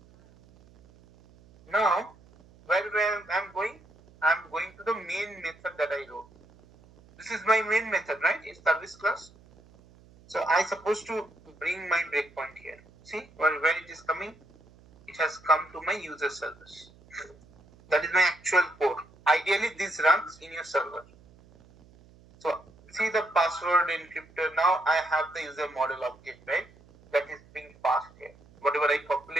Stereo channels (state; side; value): noise; right; hum, 26 dB below the sound